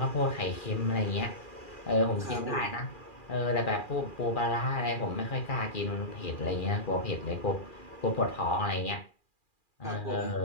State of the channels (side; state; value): right; late; 2.4 ms